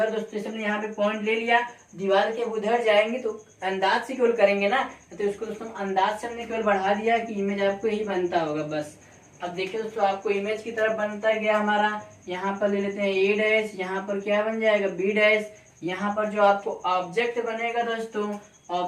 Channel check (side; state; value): both; identical; correlation 1.00